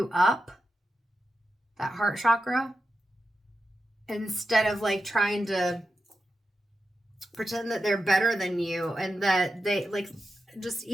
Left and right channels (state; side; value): normal; both; correlation 0.89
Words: up, that heart chakra, instead of like trying to pretend that they're better than you, and that they like, just